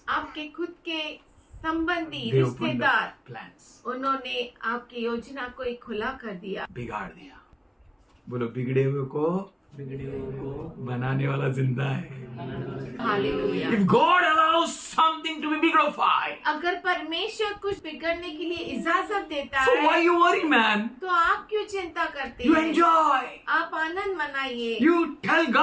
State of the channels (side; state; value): both; identical; correlation 1.00